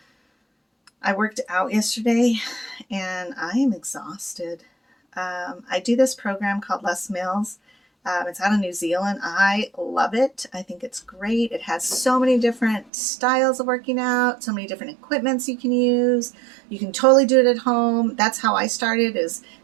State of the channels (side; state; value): left; drops out; at 12.9 s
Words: worked out yesterday and I am exhausted. I do this program called Less Meals. It's out of New Zealand. I love it. I think it's great. It has so many different styles of working out, so many different equipments you can use. You can totally do it at home. That's how I started, is